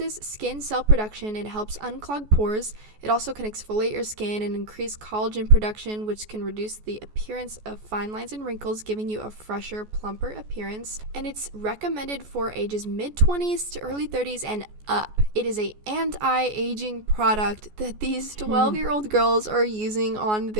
skin cell production and helps unclog pores. It also can exfoliate your skin and increase collagen production, which can reduce the appearance of fine lines and wrinkles, giving you a fresher, plumper appearance. And it's recommended for ages mid-20s to early 30s and up. It is a anti-aging product that these 12-year-old girls are using on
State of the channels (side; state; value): left; late; 14 ms